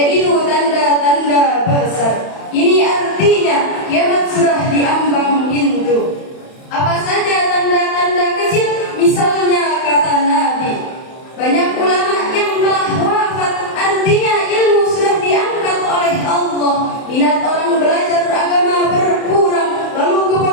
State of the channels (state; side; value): late; right; 31 ms